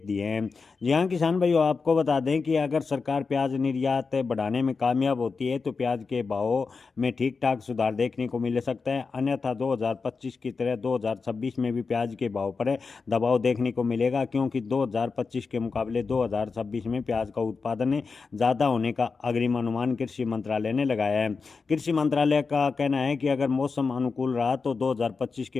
दिए हैं। जी हाँ किसान भाइयों, आपको बता दें कि अगर सरकार प्याज निर्यात बढ़ाने में कामयाब होती है तो प्याज के भाव में ठीक ठाक सुधार देखने को मिल सकता है। अन्यथा 2025 की तरह 2026 में भी प्याज के भाव पर दबाव देखने को मिलेगा, क्योंकि 2025 के मुकाबले 2026 में प्याज का उत्पादन ज़्यादा होने का अग्रिम अनुमान कृषि मंत्रालय ने लगाया है। कृषि मंत्रालय का कहना है कि अगर मौसम अनुकूल रहा तो 2025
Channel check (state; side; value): quieter; right; 4.7 dB